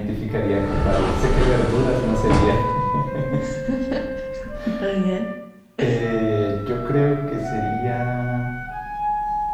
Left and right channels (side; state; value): both; identical; correlation 1.00